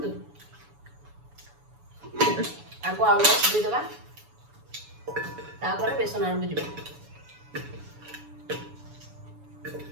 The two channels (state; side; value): late; left; 7.0 ms